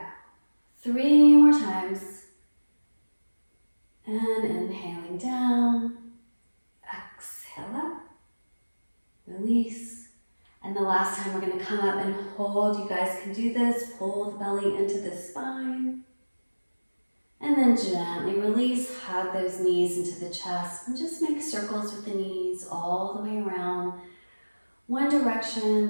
go. 3 more times. And inhaling down. Exhale up. Release. And the last time we're going to come up and hold. You guys can do this. Pull the belly into the spine. And then gently release. Hug those knees into the chest. And just make circles with the knees all the way around. One direction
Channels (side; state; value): both; inverted; correlation -1.00